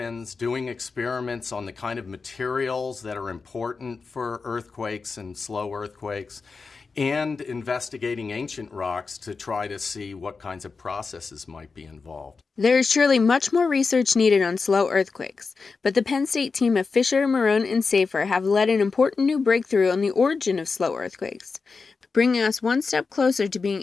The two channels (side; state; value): right; quieter; 4.6 dB